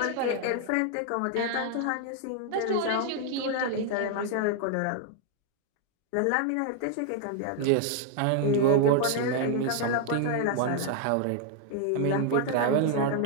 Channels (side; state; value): both; different; correlation 0.00